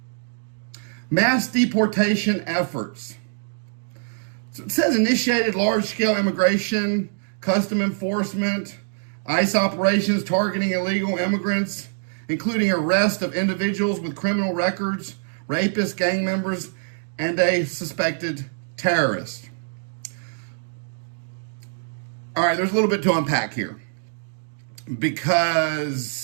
Mass deportation efforts. So it says initiated large-scale immigration, custom enforcement, ICE operations targeting illegal immigrants, including arrest of individuals with criminal records, rapists, gang members, and a suspected terrorist. All right, there's a little bit to unpack here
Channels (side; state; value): left; silent; digital silence